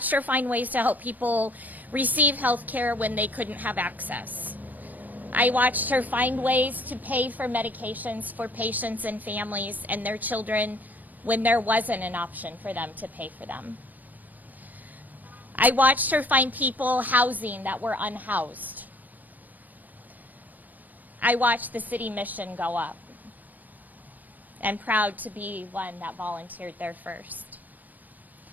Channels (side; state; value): left; late; 0.085 ms